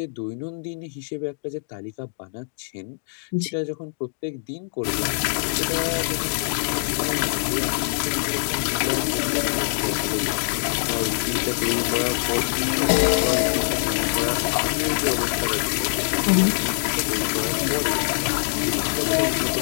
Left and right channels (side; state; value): right; silent; digital silence